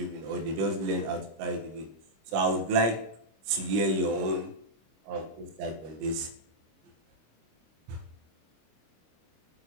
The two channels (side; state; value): left; late; 25 ms